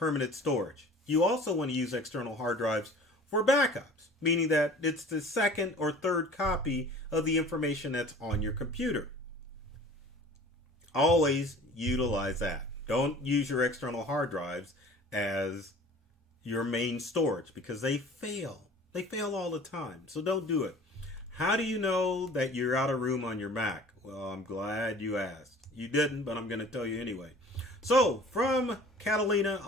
storage. You also want to use external hard drives for backups, meaning that it's the second or third copy of the information that's on your computer. Always utilize that. Don't use your external hard drives as your main storage because they fail. They fail all the time. So don't do it. How do you know that you're out of room on your Mac? Well, I'm glad you asked. You didn't, but I'm going to tell you anyway. So from Catalina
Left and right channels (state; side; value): normal; both; correlation 0.45